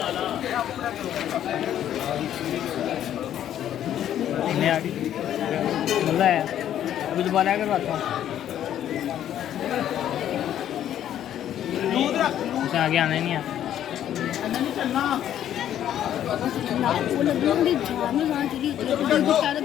बोला है अभी दोबारा करवाता हूँ उसे आगे आना ही नहीं है। वो लगी जान में जान चली तो सारा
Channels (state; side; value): quieter; right; 10.9 dB